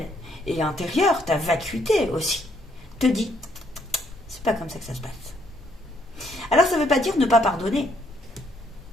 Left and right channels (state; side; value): normal; both; correlation 0.70